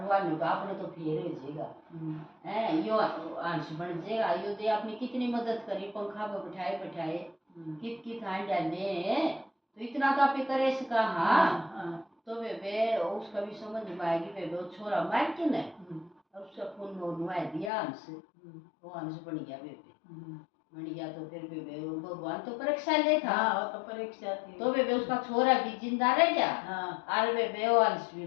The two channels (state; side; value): drops out; right; at 17.7 s